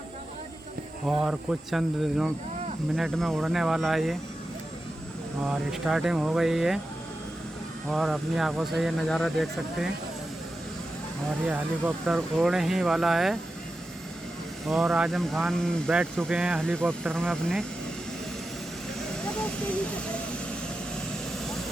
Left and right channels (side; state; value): both; normal; correlation 0.91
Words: और कुछ चंद मिनट में उड़ने वाला है ये, और स्टार्टिंग हो गई है और अपनी आंखों से ये नज़ारा देख सकते हैं। और ये हेलीकॉप्टर उड़ने ही वाला है और आजम खान बैठ चुके हैं हेलीकॉप्टर में अपने।